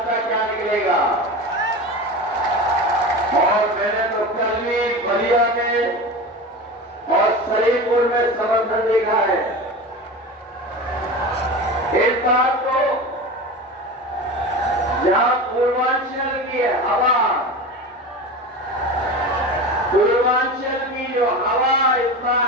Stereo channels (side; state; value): both; normal; correlation 0.29